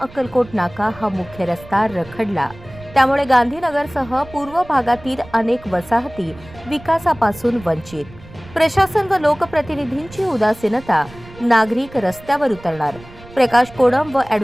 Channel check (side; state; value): right; noise; rumble, 20 dB below the sound